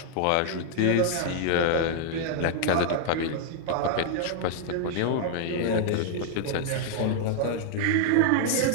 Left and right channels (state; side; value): different; both; correlation -0.01